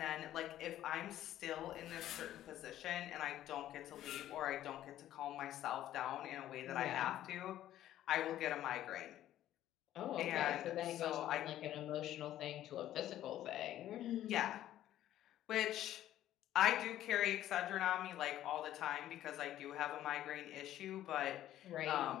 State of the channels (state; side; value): quieter; right; 12.7 dB